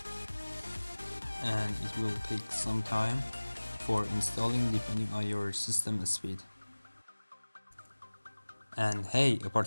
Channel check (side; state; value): both; inverted; correlation -1.00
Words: and it will take some time for installing depending on your system speed. And hey,